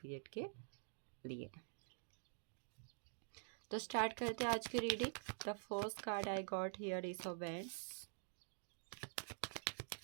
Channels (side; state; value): left; silent; digital silence